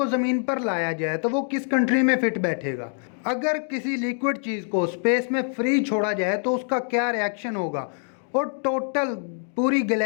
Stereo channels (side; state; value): right; silent; 55 dB below the other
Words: ज़मीन पर लाया जाए तो वो किस कंट्री में फिट बैठेगा? अगर किसी लिक्विड चीज़ को स्पेस में फ्री छोड़ा जाए तो उसका क्या रिएक्शन होगा? और टोटल पूरी